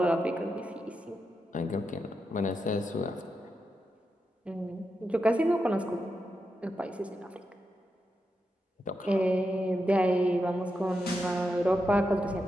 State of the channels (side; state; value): both; normal; correlation 0.87